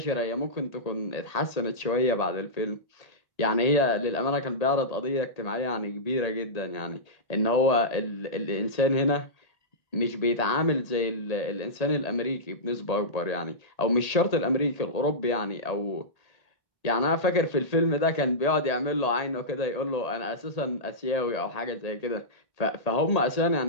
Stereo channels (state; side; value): late; right; 1.8 ms